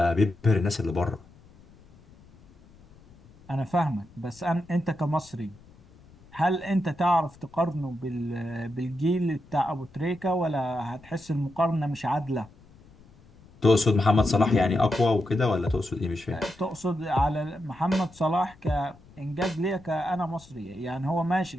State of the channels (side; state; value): left; noise; rumble, 25 dB below the sound